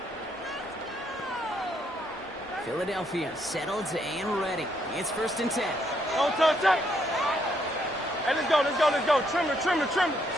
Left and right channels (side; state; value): both; normal; correlation 0.73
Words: Philadelphia settled and ready. It's 1st and 10. Don't touch that. Hey, let's go, let's go, let's go. Trim it, trim it, trim it.